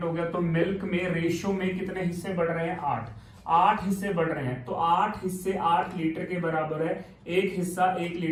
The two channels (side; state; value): both; identical; correlation 1.00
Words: हो गया तो मिल्क में रेशियो में कितने हिस्से बढ़ रहे हैं, 8 हिस्से बढ़ रहे हैं। तो 8 हिस्से 8 लीटर के बराबर है, एक हिस्सा 1